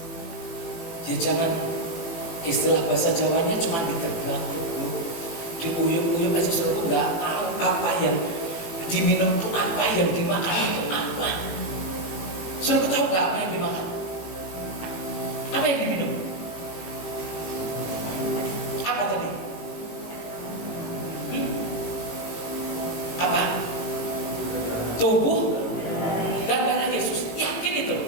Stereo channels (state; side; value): late; right; 18 ms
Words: Ya jangan istilah bahasa Jawanya cuma diterbang, diuyuk-uyuk aja, saudara nggak tahu apa yang diminum itu apa, yang dimakan itu apa. Saudara tahu nggak apa yang dimakan? Apa yang diminum? Apa tadi? Apa? Tubuh dan darah Yesus. Yakin itu?